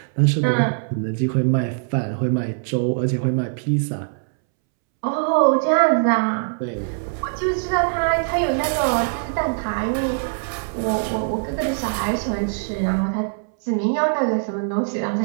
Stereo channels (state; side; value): silent; left; 64 dB below the other